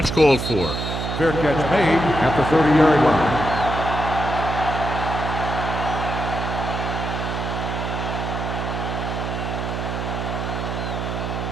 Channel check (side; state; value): right; noise; hum, 3 dB below the sound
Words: called for. Fair catch made at the 30-yard line.